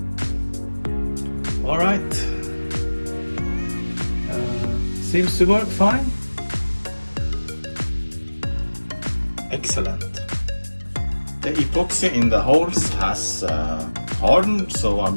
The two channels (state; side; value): inverted; both; correlation -1.00